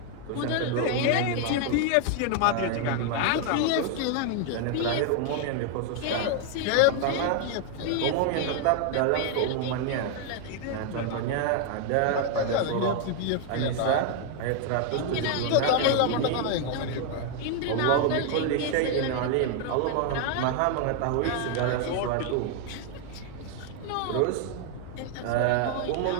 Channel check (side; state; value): both; different; correlation 0.00